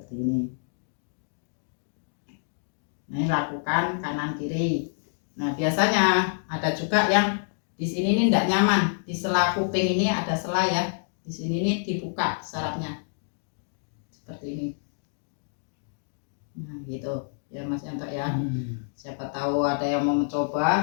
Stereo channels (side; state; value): right; silent; digital silence